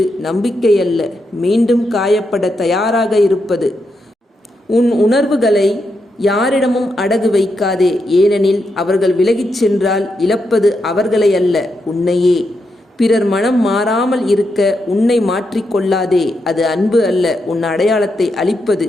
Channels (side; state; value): both; normal; correlation 0.83